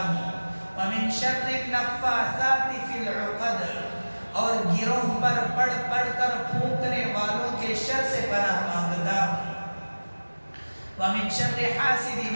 ومن شر النفاثات فی العقد، اور گروہ پر پڑھ پڑھ کر پھونکنے والوں کے شر سے پناہ مانگتا ہوں، ومن شر حاسد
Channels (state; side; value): inverted; both; correlation -1.00